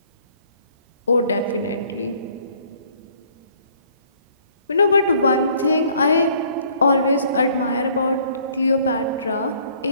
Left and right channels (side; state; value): both; inverted; correlation -0.60